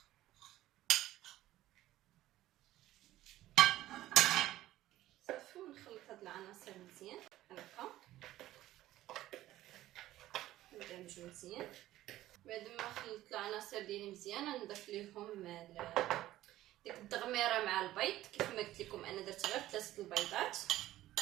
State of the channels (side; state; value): left; quieter; 14.9 dB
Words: صافي، ونخلط هاد العناصر مزيان هكا، ندمجو مزيان. بعد ما خلطت العناصر ديالي مزيان نضيف ليهم ديك الدغميره مع البيض. كيف ما قلت لكم انا درت غير 3 البيضات،